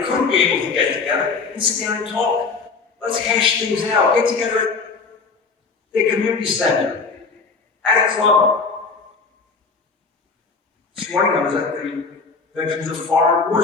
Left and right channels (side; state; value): right; quieter; 4.6 dB